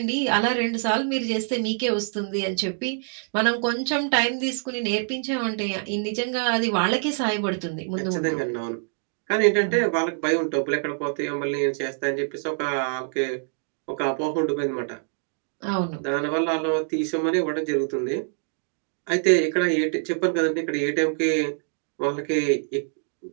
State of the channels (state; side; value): silent; left; digital silence